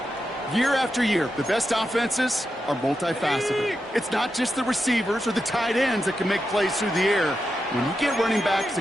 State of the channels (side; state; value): both; normal; correlation 0.88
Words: Year after year, the best offenses are multifaceted. It's not just the receivers or the tight ends that can make plays through the air. When you get running backs